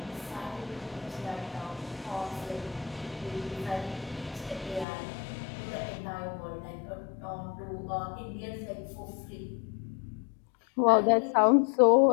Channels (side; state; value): right; drops out; at 4.9 s